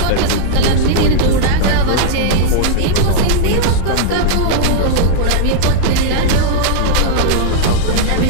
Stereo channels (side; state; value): both; different; correlation -0.01